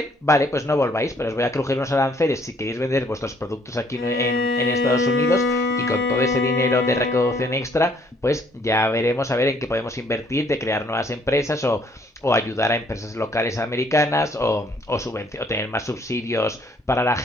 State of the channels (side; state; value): both; normal; correlation 0.64